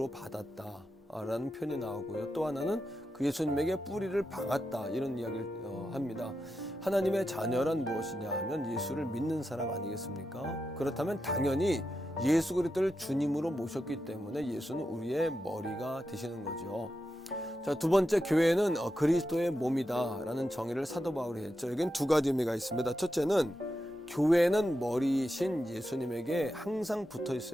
받았다 라는 표현이 나오고요. 또 하나는 그 예수님에게 뿌리를 박았다 이런 이야기를 합니다. 하나님의 자녀란 무엇이냐 하면 예수를 믿는 사람 아니겠습니까? 그렇다면 당연히 예수 그리스도를 주님으로 모셨기 때문에 예수는 우리의 머리가 되시는 거죠. 자, 두 번째, 교회는 그리스도의 몸이다 라는 정의를 사도 바울이 했죠. 여기는 두 가지 의미가 있습니다. 첫째는 교회는 머리이신 예수님에게 항상 붙어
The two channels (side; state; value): both; normal; correlation 0.88